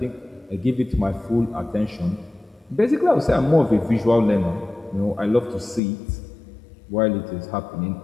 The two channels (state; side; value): drops out; right; at 5.8 s